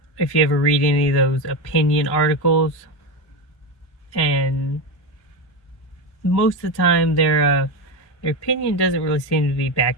if you ever read any of those opinion articles, and most of the time their opinion doesn't really seem to be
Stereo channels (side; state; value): right; late; 1.1 ms